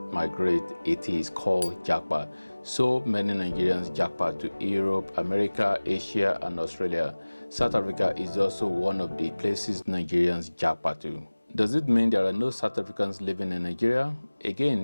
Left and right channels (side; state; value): both; inverted; correlation -1.00